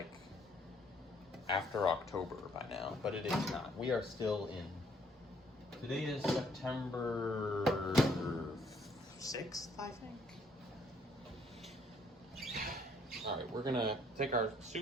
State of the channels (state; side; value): normal; both; correlation 0.65